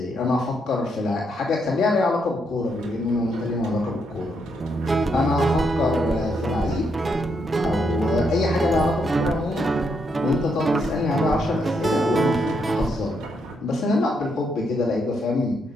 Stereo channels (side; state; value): both; normal; correlation 0.78